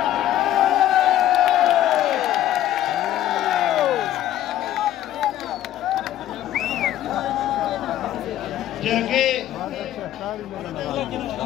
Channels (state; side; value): quieter; right; 12.7 dB